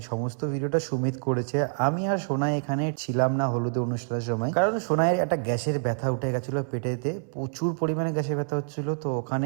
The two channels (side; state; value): left; silent; 60 dB below the other